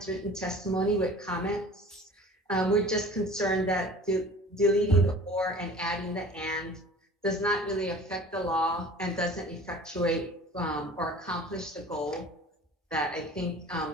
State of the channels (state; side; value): normal; both; correlation 0.43